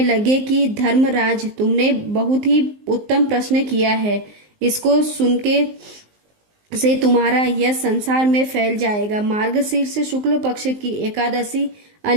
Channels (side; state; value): left; late; 19 ms